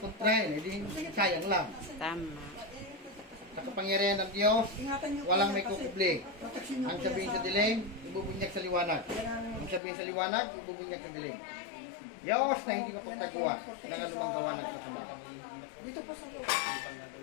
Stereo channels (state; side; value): drops out; right; at 9.8 s